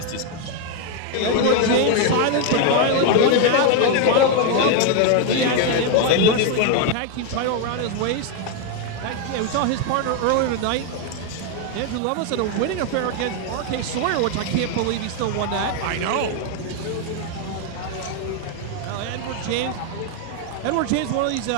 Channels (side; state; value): both; different; correlation 0.01